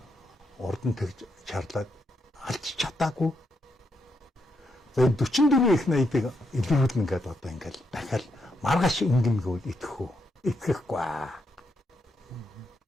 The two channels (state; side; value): normal; both; correlation 0.80